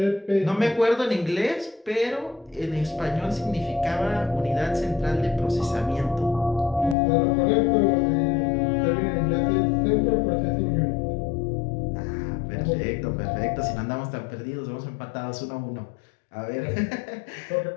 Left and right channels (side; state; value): right; drops out; at 7.0 s